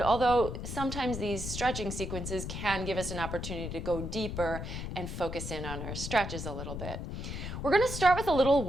although sometimes these stretching sequences can give us an opportunity to go deeper and focus in on our stretches a little bit. We're going to start with a little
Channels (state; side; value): noise; left; rumble, 6 dB below the sound